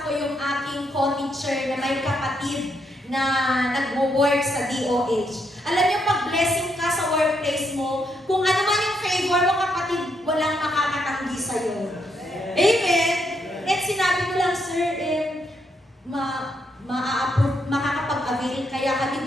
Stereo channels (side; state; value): both; normal; correlation 0.77